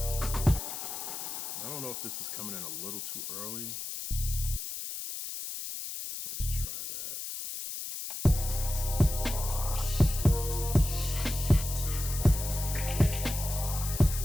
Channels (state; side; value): noise; left; hiss, 6 dB below the sound